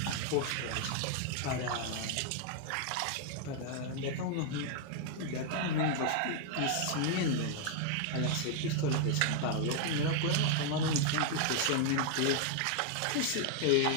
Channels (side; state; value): both; different; correlation 0.00